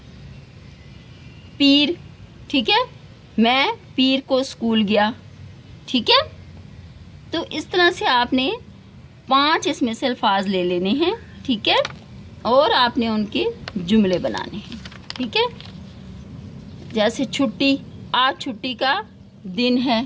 پیر، ٹھیک ہے، میں پیر کو اسکول گیا، ٹھیک ہے؟ تو اس طرح سے آپ نے 5 اس میں سے الفاظ لے لینے ہیں، ٹھیک ہے؟ اور آپ نے ان کے جملے بنانے ہیں، ٹھیک ہے؟ جیسے چھٹی، آج چھٹی کا دن ہے،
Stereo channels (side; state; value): both; identical; correlation 1.00